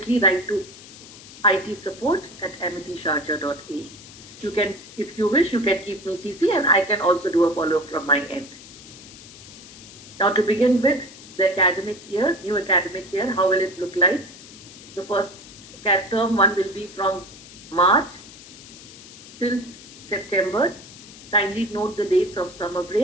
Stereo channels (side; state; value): left; noise; hiss, 18 dB below the sound